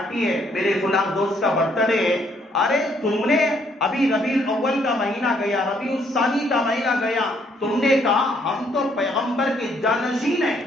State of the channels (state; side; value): normal; both; correlation 0.68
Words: ہے, میرے فلان دوست کا برتھ ڈے ہے. ارے تم نے ابھی ربیع الاول کا مہینہ گیا, ربیع الثانی کا مہینہ گیا, تم نے کہا ہم تو پیغمبر کے جانشین ہیں,